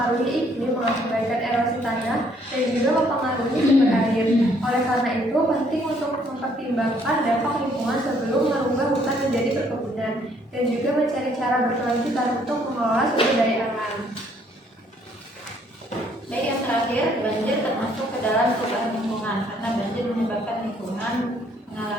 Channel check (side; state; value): both; normal; correlation 0.65